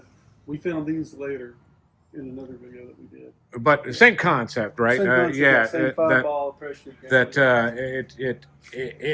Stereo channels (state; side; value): identical; both; correlation 1.00